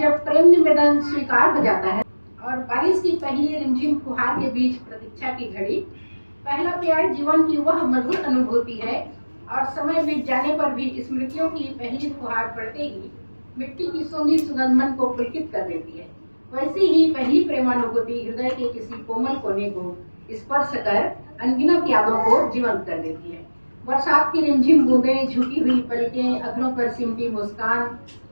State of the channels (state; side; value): inverted; both; correlation -1.00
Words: प्रेम निवेदन स्वीकार हो जाता है और बारिश की पहली रिमझिम फुहार के बीच प्रतीक्षा की घड़ी, पहला प्यार जीवन की वह मधुर अनुभूति है और समय बीत जाने पर भी स्मृतियों की पहली फुहार पड़ते ही मिट्टी की सोंधी सुगंध मन को पुलकित कर देती है। वैसे ही पहली प्रेमानुभूति हृदय के किसी कोमल कोने को स्पर्श कर अनगिनत यादों को जीवंत कर देती है। बरसात की रिमझिम बूंदें, झुकी हुई पलकें, अधरों पर सिमटी मुस्कान